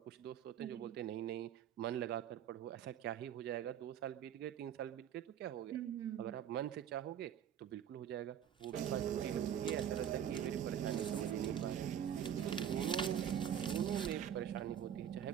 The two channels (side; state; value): left; quieter; 9.4 dB